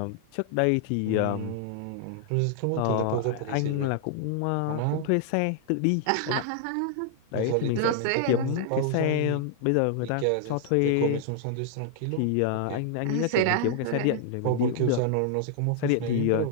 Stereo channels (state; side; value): different; both; correlation -0.01